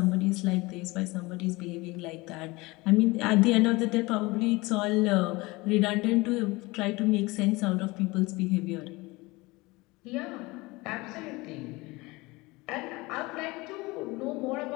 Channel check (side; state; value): right; quieter; 22.8 dB